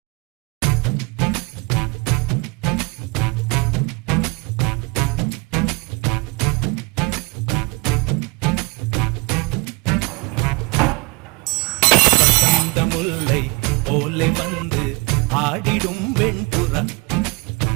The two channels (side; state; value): left; quieter; 27.5 dB